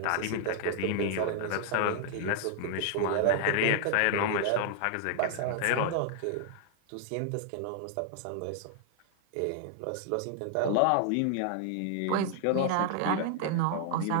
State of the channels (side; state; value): both; different; correlation 0.00